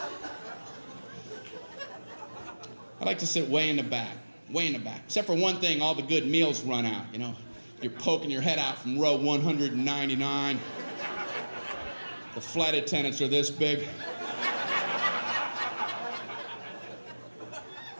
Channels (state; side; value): inverted; both; correlation -1.00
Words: I like to sit way in the back. Except for one thing, all the good meals run out, you know. You're poking your head out from row 199. The flight attendants are this big.